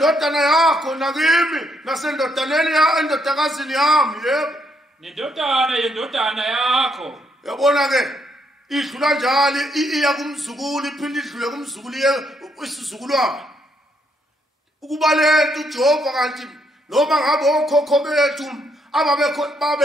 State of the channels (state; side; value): normal; both; correlation 0.74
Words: yakho nakimi nasendodaneni endodakazini yami yebo. Nendodana yendodana yakho. Yabona ke idlula njalo iya kumzukulu iphinde idlule kumzukulu isizukulwana. Ukuba lento uJehova kanti noma ngabe okhokho bethu